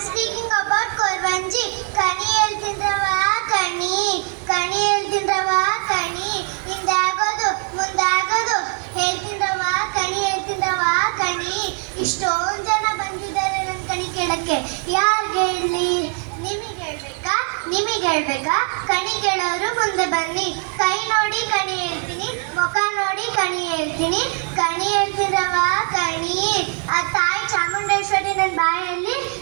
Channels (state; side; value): quieter; left; 35.9 dB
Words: speaking about Korvanji. Kani ಹೇಳ್ತಿದ್ರವಾ ಕಣಿ ಕಣಿ ಹೇಳ್ತಿದ್ರವಾ ಕಣಿ ಹಿಂದಾಗೋದು ಮುಂದಾಗೋದು ಹೇಳ್ತಿದ್ರವಾ ಹೇಳ್ತಿದ್ರವಾ ಕಣಿ ಇಷ್ಟೊಂದು ಜನ ಬಂದಿದ್ದಾರೆ ನನ್ನ ಕಣಿ ಕೇಳಕ್ಕೆ ಯಾರಿಗೆ ಹೇಳಿ ನಿಮಗೆ ಹೇಳ್ಬೇಕಾ ಕಣಿ ಕೇಳೋರು ಮುಂದೆ ಬನ್ನಿ ಕೈ ನೋಡಿ ಕಣಿ ಹೇಳ್ತೀನಿ ಮುಖ ನೋಡಿ ಕಣಿ ಹೇಳ್ತೀನಿ ಕಣಿ ಹೇಳ್ತಿದ್ರವಾ ಕಣಿ ಆ ತಾಯಿ ಚಾಮುಂಡೇಶ್ವರಿ ನನ್ನ ಬಾಯಲ್ಲಿ